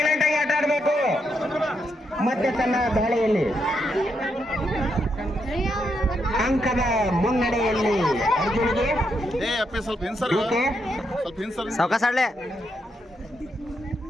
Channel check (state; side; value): normal; both; correlation 0.80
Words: ಆಗಿ ಆಟ ಆಡಬೇಕು. ಮತ್ತೆ ತನ್ನ ದಾಳಿಯಲ್ಲಿ ಅಂಕದ ಮುನ್ನಡೆಯಲ್ಲಿ ಅರ್ಜುನಿಗೆ ಸಾವಕಾಶಾಡ್ಲೆ